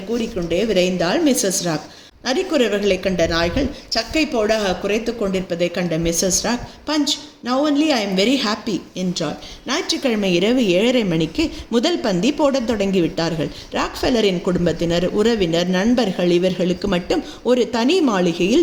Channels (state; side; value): identical; both; correlation 1.00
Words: கூறிக்கொண்டே விரைந்தாள் மிஸ்ஸஸ் ராக். நரிக்குறவர்களை கண்ட நாய்கள் சக்கை போடாக குறைத்து கொண்டிருப்பதை கண்ட Mrs Rock, Punch, now only I am very happy என்றாள். ஞாயிற்றுக்கிழமை இரவு 7:30 மணிக்கு முதல் பந்தி போடத் தொடங்கிவிட்டார்கள். ராக்ஃபெல்லரின் குடும்பத்தினர், உறவினர், நண்பர்கள் இவர்களுக்கு மட்டும் ஒரு தனி